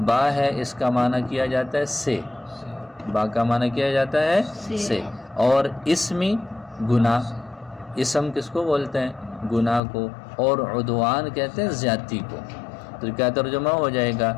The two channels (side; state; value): right; drops out; at 9.8 s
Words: با ہے اس کا معنی کیا جاتا ہے سے، با کا معنی کیا جاتا ہے سے، اور اسمی گناہ، اسم کس کو بولتے ہیں؟ گناہ کو، اور عدوان کہتے ہیں زیادتی کو۔ تو کیا ترجمہ ہو جائے گا؟